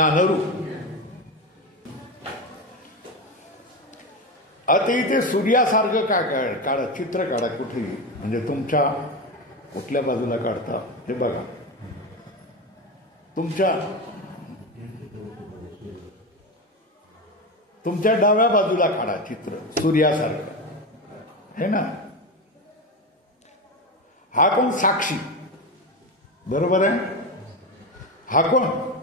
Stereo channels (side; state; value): both; normal; correlation 0.18